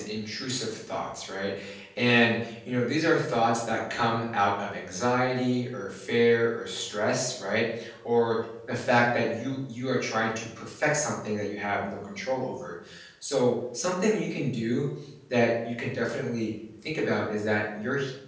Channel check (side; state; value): both; identical; correlation 1.00